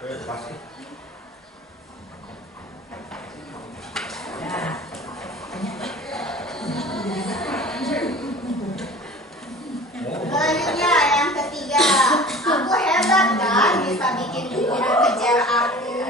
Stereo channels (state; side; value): normal; both; correlation 0.41